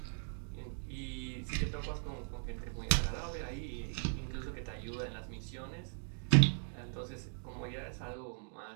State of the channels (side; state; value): left; silent; 52 dB below the other